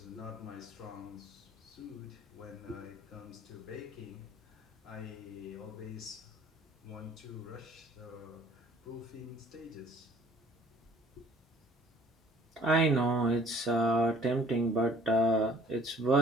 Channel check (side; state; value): both; normal; correlation 0.54